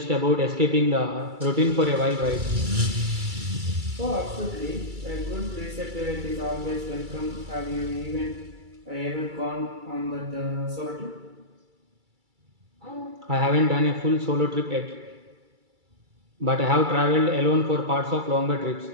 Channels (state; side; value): late; left; 2.3 ms